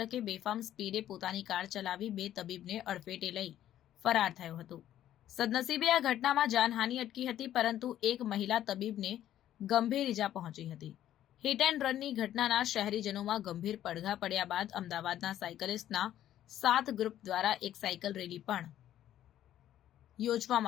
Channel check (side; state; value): right; quieter; 11.9 dB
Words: બેફામ સ્પીડે પોતાની કાર ચલાવી બે તબીબને અડફેટે લઈ ફરાર થયો હતો। સદનસીબે આ ઘટનામાં જાનહાનિ અટકી હતી, પરંતુ એક મહિલા તબીબને ગંભીર ઇજા પહોંચી હતી। હિટ એન્ડ રનની ઘટનાના શહેરીજનોમાં ગંભીર પડઘા પડ્યા બાદ અમદાવાદના સાયકલિસ્ટના 7 ગ્રુપ દ્વારા એક સાયકલ રેલી પણ